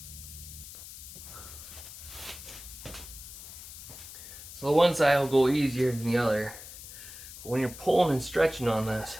So the one side will go easier than the other. But when you're pulling and stretching on this,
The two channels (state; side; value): noise; left; hiss, 13 dB below the sound